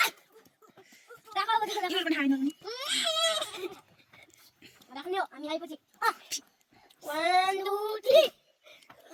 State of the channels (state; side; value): identical; both; correlation 1.00